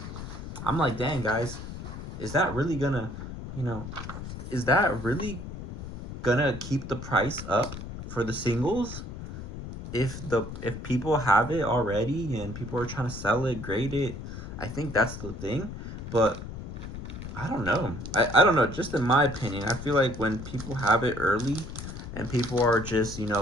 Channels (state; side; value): noise; left; rumble, 9 dB below the sound